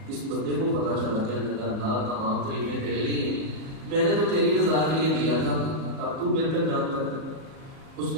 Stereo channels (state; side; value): late; left; 37 ms